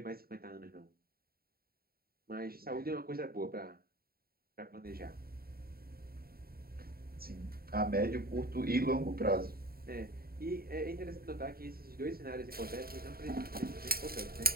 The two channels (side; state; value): left; late; 0.44 ms